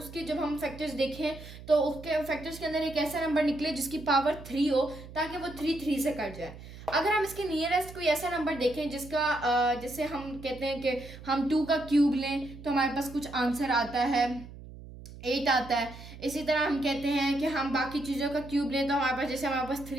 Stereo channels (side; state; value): right; noise; hum, 15 dB below the sound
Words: जब हम फैक्टर्स देखें तो उसके फैक्टर्स के अंदर एक ऐसा नंबर निकले जिसकी पावर 3 हो ताकि वो 3 से कट जाए. अगर हम इसके नियरेस्ट कोई ऐसा नंबर देखें जिसका जैसे हम कहते हैं कि हम 2 का क्यूब लें तो हमारे पास कुछ आंसर आता है 8 आता है. इसी तरह हम कहते हैं कि हम बाकी चीज़ों का क्यूब लें तो हमारे पास, जैसे हमारे पास